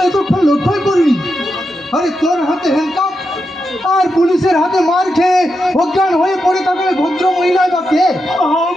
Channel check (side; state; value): both; normal; correlation 0.86